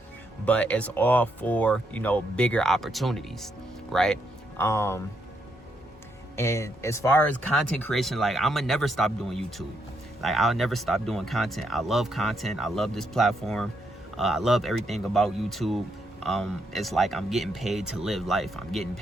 But it's all for, you know, bigger opportunities, right? And as far as content creation, like, I'm gonna never stop doing YouTube. Like, I'll never stop doing content. I love content. I love this platform. I love everything about YouTube. It's like I'm getting paid to live life. I'm getting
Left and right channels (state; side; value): normal; both; correlation 0.78